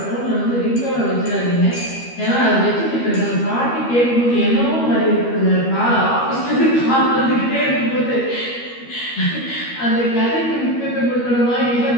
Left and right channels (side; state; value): right; late; 12 ms